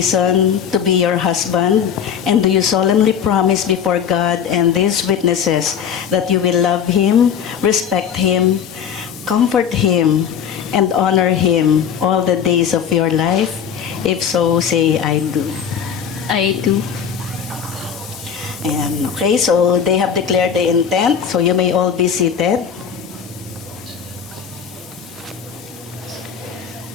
to be your husband? And do you solemnly promise before God and these witnesses that you will love him, respect him, comfort him, and honor him all the days of your life? If so, say, I do. I do. And okay, so they have declared the intent, so you may all be seated.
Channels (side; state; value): right; quieter; 7.8 dB